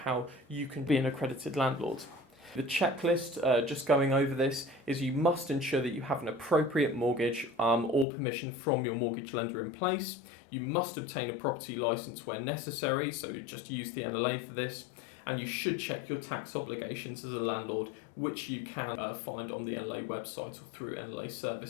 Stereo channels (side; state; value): right; drops out; at 8.1 s